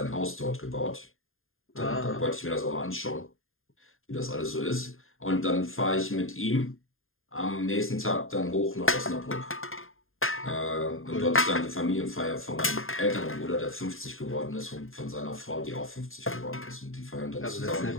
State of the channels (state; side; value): late; right; 0.60 ms